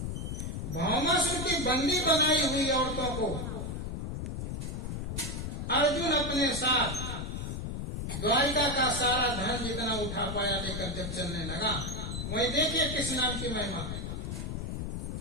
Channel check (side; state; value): left; noise; rumble, 4 dB below the sound